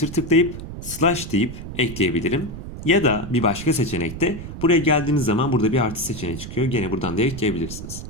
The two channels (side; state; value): right; noise; rumble, 10 dB below the sound